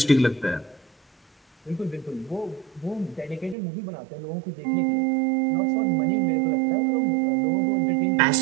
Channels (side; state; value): left; drops out; at 3.6 s